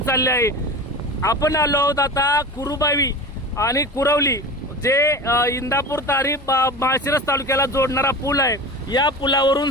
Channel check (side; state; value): both; normal; correlation 0.31